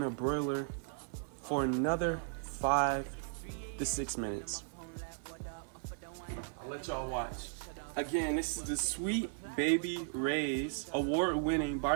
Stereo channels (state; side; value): silent; left; digital silence